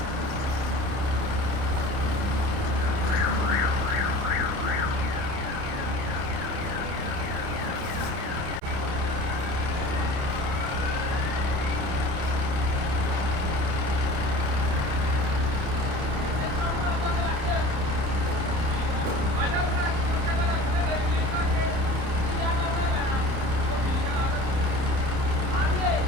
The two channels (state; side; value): late; left; 30 ms